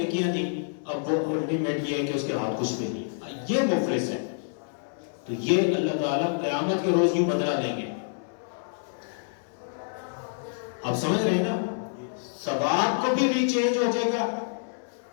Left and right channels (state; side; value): silent; right; 60 dB below the other